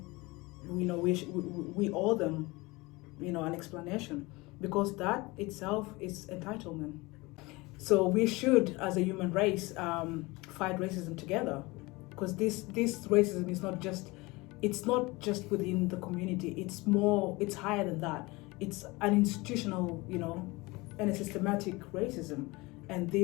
owe them, an explanation, because that itself is entitlement. So we should, as a human race, fight racism together, because this racism is not just within the community. It's higher than that. It's an institutional, and a systematic racism. And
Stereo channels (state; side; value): quieter; right; 23.3 dB